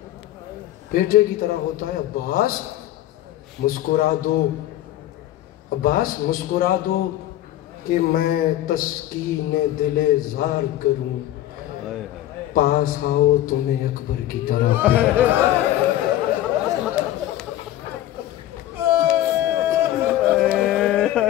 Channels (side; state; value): right; quieter; 13.6 dB